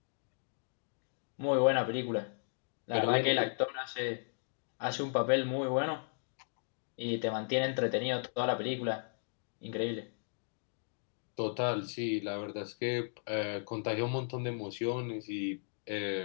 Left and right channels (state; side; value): silent; right; digital silence